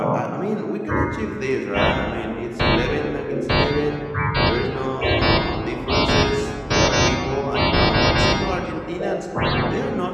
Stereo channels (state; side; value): identical; both; correlation 1.00